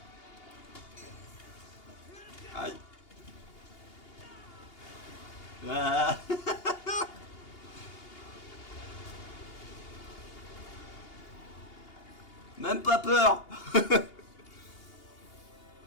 Aïe. Ah. Même pas peur.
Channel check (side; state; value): right; late; 2.8 ms